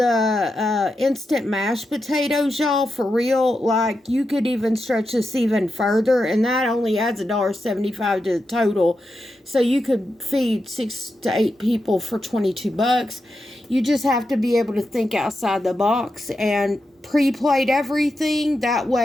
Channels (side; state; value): both; normal; correlation 0.88